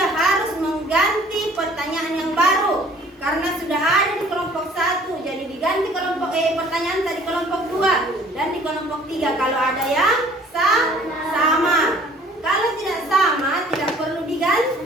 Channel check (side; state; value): both; normal; correlation 0.54